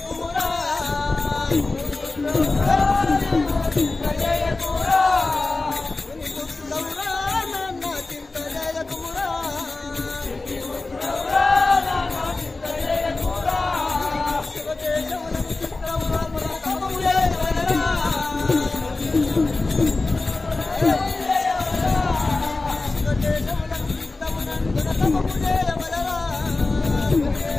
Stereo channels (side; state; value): right; quieter; 3.4 dB